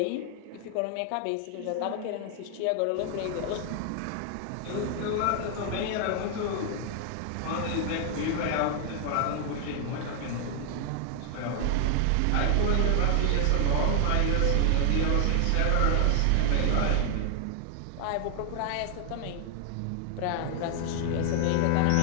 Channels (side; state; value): both; different; correlation 0.00